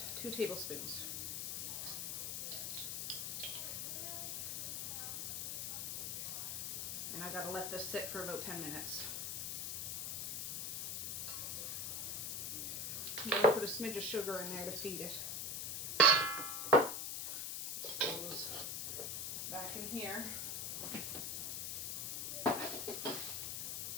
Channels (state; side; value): noise; left; hiss, 2 dB below the sound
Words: 2 tablespoons. And I gotta let this sit for about 10 minutes. I'm gonna put a smidge of sugar in there to feed it. This goes back in here.